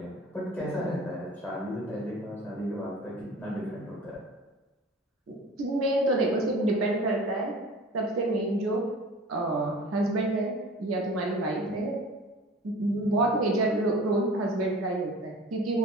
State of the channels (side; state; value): both; normal; correlation 0.41